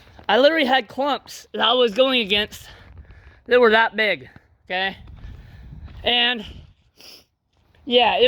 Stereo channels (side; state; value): both; identical; correlation 1.00